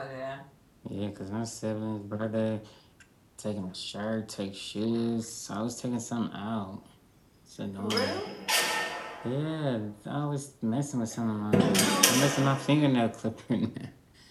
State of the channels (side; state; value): both; identical; correlation 1.00